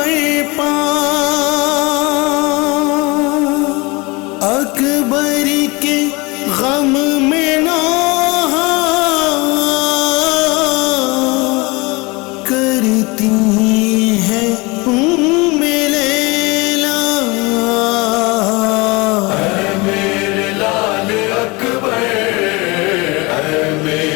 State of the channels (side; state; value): right; quieter; 25.5 dB